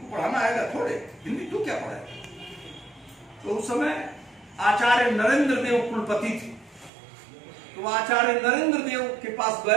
पढ़ाना आएगा थोड़े, हिंदी तू क्या पढ़ाएगा। तो उस समय आचार्य नरेंद्र देव कुलपति थे। तो आचार्य नरेंद्र देव के पास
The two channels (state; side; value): drops out; left; at 6.9 s